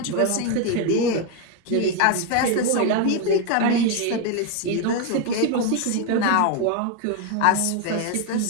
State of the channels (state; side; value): different; both; correlation 0.01